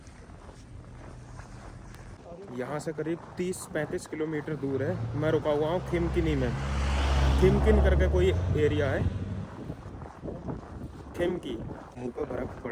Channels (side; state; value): both; identical; correlation 1.00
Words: यहाँ से करीब 30-35 किलोमीटर दूर है। मैं रुका हुआ हूँ खिमकिनी में। खिमकिन करके कोई एरिया है, खिमकी। मुँह पर बर्फ़